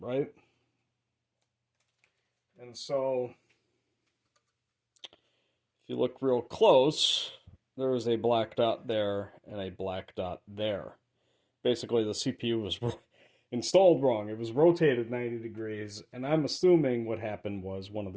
And so, if you look real close, there is a black dot there and a black dot there. Basically, the CPU was installed wrong. It was rotated 90 degrees, and I'm assuming what happened was one of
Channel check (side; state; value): both; identical; correlation 1.00